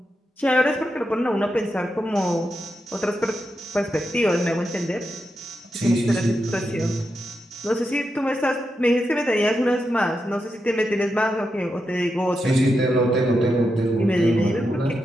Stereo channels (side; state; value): both; normal; correlation 0.86